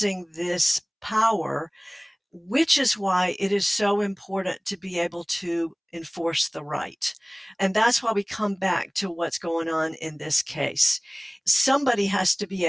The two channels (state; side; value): identical; both; correlation 1.00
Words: this power, which is why it is so important to be able to enforce the right. And that's why we come back to what's going on in this case. Somebody has to be